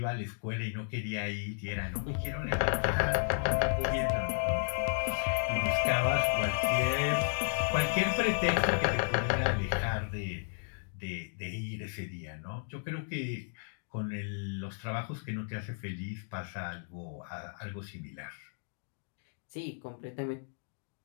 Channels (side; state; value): right; silent; digital silence